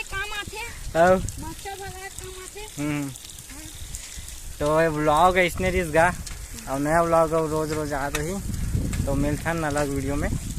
काम आते मच्छर भगाए काम आते। तो ये ब्लॉग है इसने रिस गा और नया ब्लॉग है रोज रोज आ रही तो मिलता है अलग वीडियो में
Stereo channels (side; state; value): both; identical; correlation 1.00